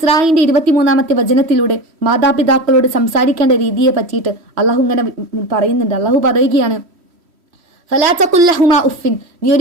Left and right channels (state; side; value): late; left; 3.1 ms